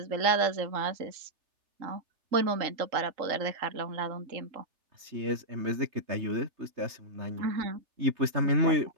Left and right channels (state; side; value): late; left; 3.3 ms